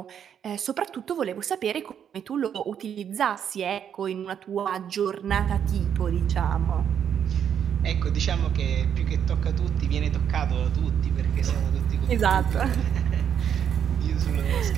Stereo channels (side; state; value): left; quieter; 8.6 dB